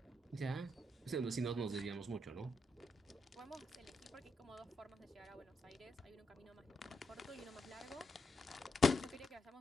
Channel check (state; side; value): normal; both; correlation 0.82